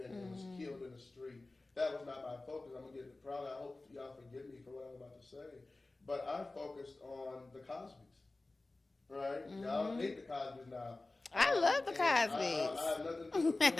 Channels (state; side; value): quieter; right; 3.1 dB